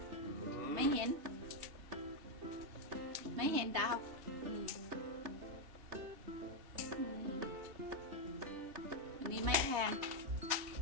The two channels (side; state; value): left; late; 2.7 ms